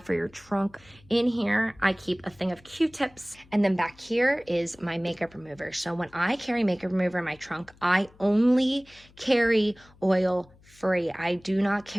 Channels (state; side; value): noise; left; hum, 27 dB below the sound